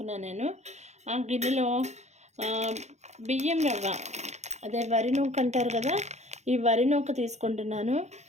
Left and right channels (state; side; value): late; left; 0.33 ms